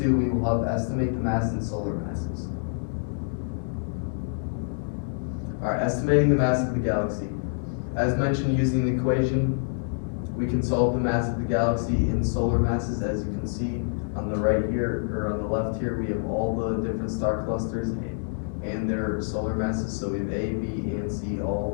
we will help estimate the mass in solar masses. Alright, estimating the mass of the galaxy. As mentioned, using the equation, we can solve the mass of the galaxy in solar masses. As you can see on the right here, or on the left here, we have all the different star clusters and their solar masses. So we have A, B, and C,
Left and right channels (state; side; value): silent; right; 60 dB below the other